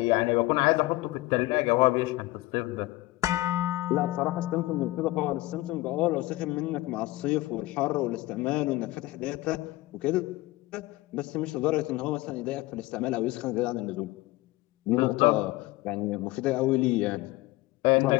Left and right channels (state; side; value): quieter; right; 19.3 dB